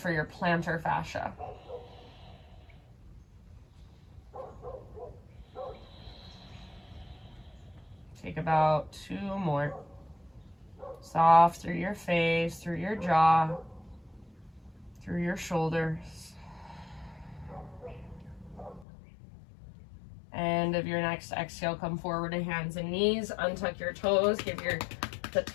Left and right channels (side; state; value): right; drops out; at 18.9 s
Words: your plantar fascia. Take about 2 more. Soft through your face, through your jaw, through your shoulders. End of your next exhale, come forward to hands and knees. Untuck your toes. Give the